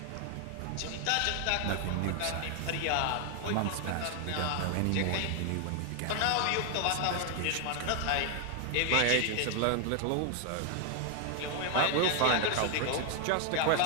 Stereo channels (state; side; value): different; both; correlation 0.00